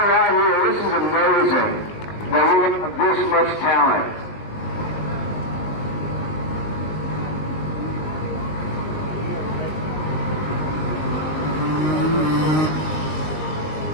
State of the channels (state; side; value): late; right; 19 ms